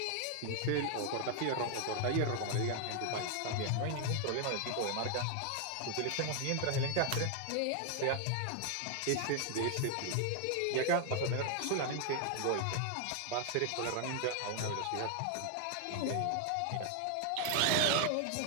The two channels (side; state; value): both; different; correlation 0.00